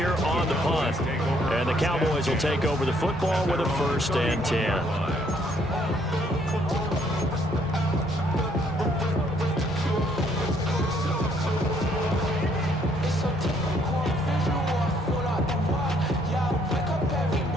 on the punt. And the Cowboys will take over the football with a 1st and 10.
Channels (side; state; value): both; normal; correlation 0.68